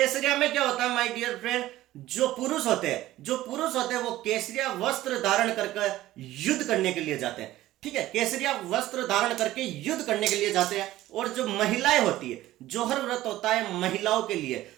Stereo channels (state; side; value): quieter; left; 15.4 dB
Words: में क्या होता है माय डियर फ्रेंड, जो पुरुष होते हैं वो केसरिया वस्त्र धारण करके युद्ध करने के लिए जाते हैं। ठीक है, केसरिया वस्त्र धारण करके युद्ध करने के लिए जाते हैं। और जो महिलाएं होती है, जौहर व्रत होता है महिलाओं के लिए,